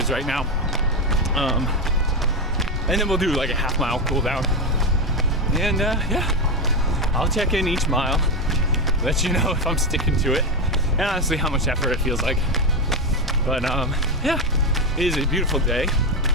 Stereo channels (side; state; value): both; normal; correlation 0.11